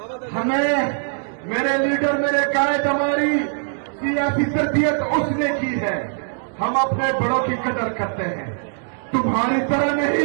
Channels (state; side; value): silent; left; digital silence